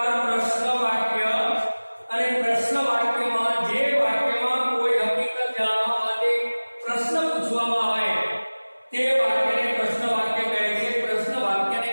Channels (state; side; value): inverted; both; correlation -1.00